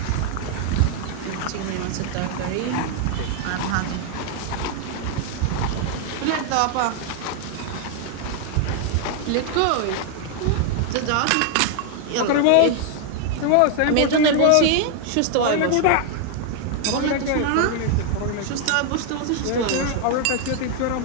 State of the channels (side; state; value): both; different; correlation 0.00